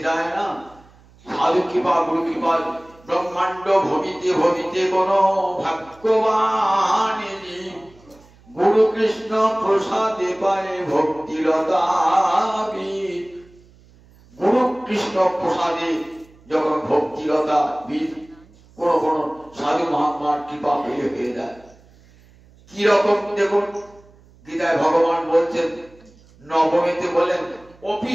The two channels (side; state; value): right; noise; hum, 27 dB below the sound